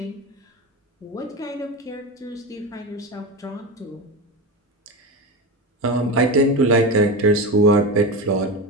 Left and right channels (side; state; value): both; normal; correlation 0.21